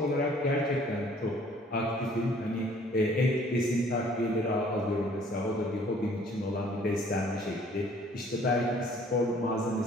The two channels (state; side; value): normal; both; correlation 0.57